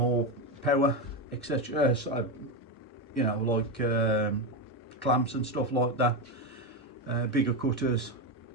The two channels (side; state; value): both; normal; correlation 0.12